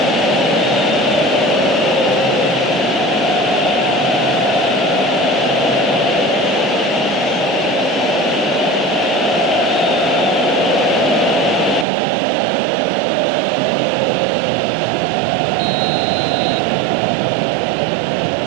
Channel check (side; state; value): left; drops out; at 11.9 s